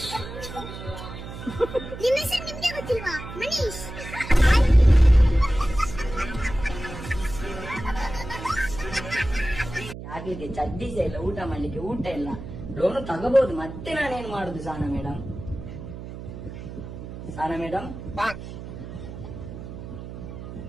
ನಿಮ್ಮ ಹೆಸರು ನಿಮ್ಗೆ ಗೊತ್ತಿಲ್ವಾ? ಮನೀಶ್. ಆಗ್ಲಿಕ್ಕೆ ಚಡ್ಡಿಸ ಇಲ್ಲ, ಊಟ ಮಾಡ್ಲಿಕ್ಕೆ ಊಟ ಇಲ್ಲ, ಲೋನು ತಗೋಬಹುದು. ಮತ್ತೆ ನಾನೇನ್ ಮಾಡುದು Sana madam? Sana madam,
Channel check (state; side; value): noise; right; hum, 11 dB below the sound